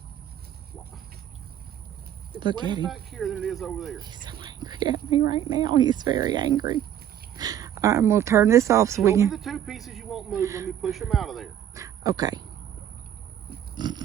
It's Look at wetter him. back here than it is over there. He's so angry at me right now. He's very angry. All right, I'm going to turn this off so we Show me can... the 2 pieces you won't move. Let me push them out of there. Okay.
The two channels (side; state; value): left; quieter; 10.4 dB